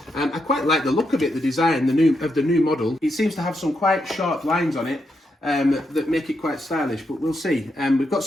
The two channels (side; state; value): both; normal; correlation 0.82